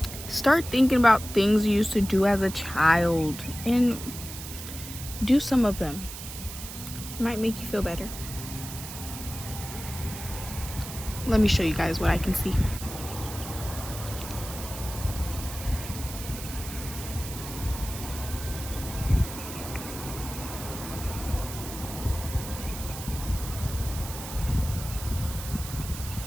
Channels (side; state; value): right; noise; hiss, 10 dB below the sound